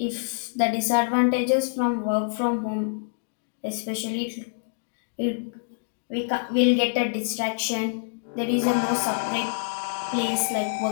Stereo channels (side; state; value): right; silent; digital silence